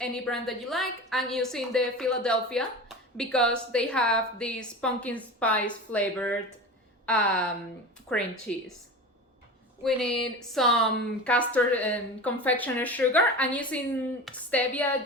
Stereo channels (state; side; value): normal; both; correlation 0.31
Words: brand that you like. I'm using the Philadelphia because they have this pumpkin spice flavored cream cheese. We need some custard and confectioner sugar. I'm using stevia